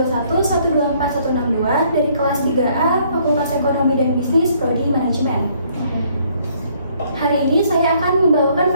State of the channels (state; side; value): inverted; both; correlation -0.65